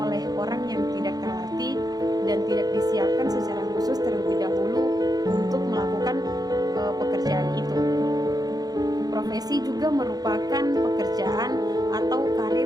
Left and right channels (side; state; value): left; late; 0.19 ms